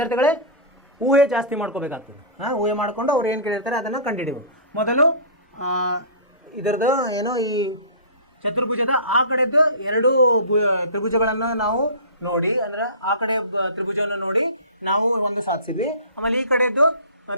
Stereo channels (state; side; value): inverted; both; correlation -0.35